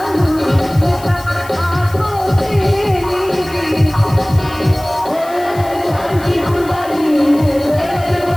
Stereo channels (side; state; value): left; noise; hiss, 20 dB below the sound